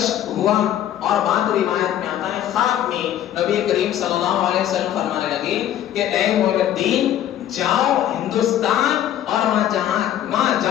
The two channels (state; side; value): quieter; right; 11.4 dB